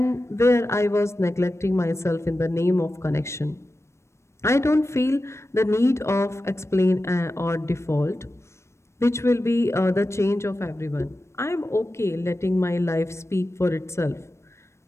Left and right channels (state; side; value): late; right; 0.13 ms